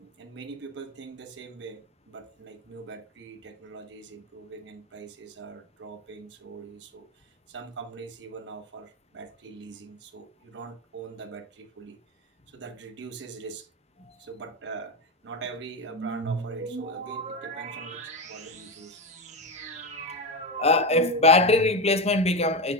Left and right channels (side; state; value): both; normal; correlation 0.15